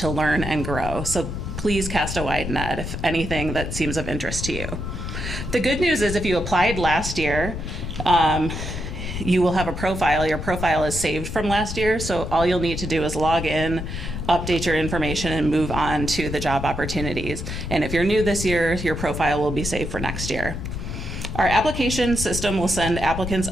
learn and grow. So please cast a wide net if anything that seems of interest to you. The good news is if you applied last year, you will have a profile. Your profile is saved from last year, so all you'll need to do is log in, update your information, and move on to the job opportunities. And if you're new this year, your profile will be saved for next year. Our application system will send applicants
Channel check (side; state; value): left; noise; rumble, 6 dB below the sound